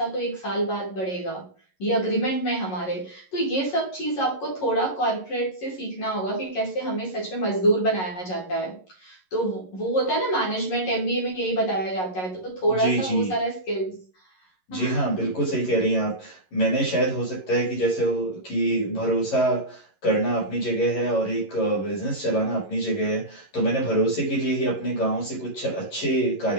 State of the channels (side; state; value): right; late; 11 ms